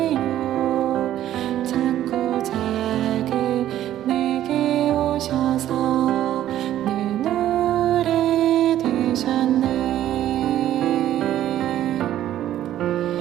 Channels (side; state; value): left; quieter; 12.4 dB